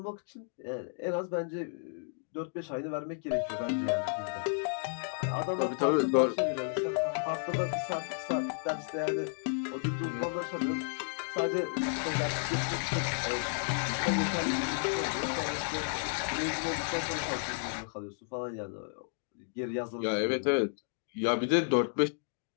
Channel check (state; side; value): silent; right; digital silence